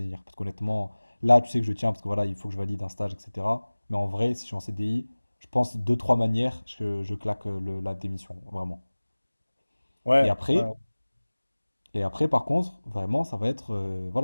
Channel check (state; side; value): inverted; both; correlation -1.00